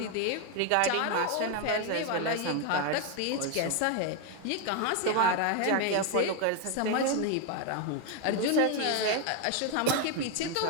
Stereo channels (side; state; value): both; different; correlation 0.01